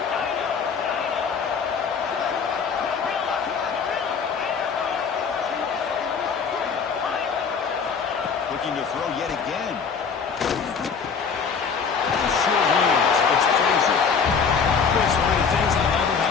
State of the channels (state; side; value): quieter; right; 5.9 dB